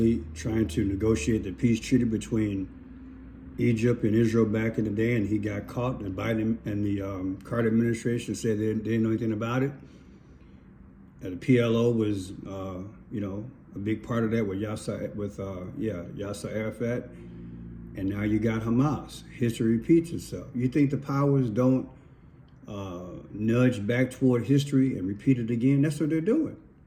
trying to negotiate the peace treaty between Egypt and Israel back in the day, and he got caught. And Biden and the Carter administration said they didn't know anything about it. And the PLO was, a big part of that with Yasser Arafat. And now you got Hamas. History repeats itself. You think the powers don't nudge back toward history and repeat it again? That's what they're doing.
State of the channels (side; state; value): both; identical; correlation 1.00